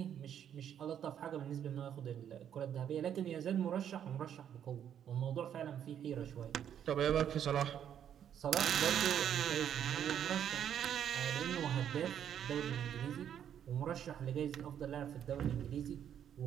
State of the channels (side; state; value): left; quieter; 9.4 dB